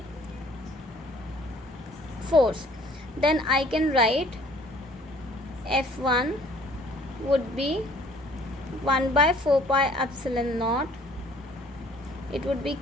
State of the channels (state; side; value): normal; both; correlation 0.56